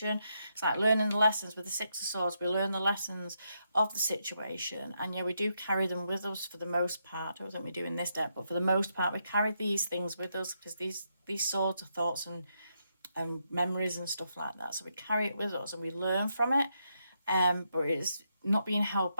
It's like learning the lessons with the Six of Swords. We learn the lessons of the situation. And yeah, we do carry them with us for the most part. I don't think we do in this deck, but for the most part, we carry these things with us, because these swords are thoughts and memories and stuff like that. So we carry it with us and we learn from it. But it's not being held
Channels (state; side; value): inverted; both; correlation -0.80